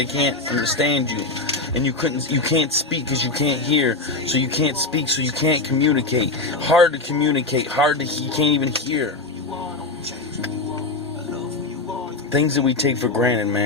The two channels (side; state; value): right; quieter; 3.4 dB